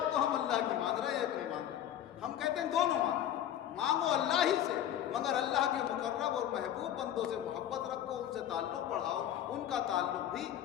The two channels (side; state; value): right; quieter; 11.0 dB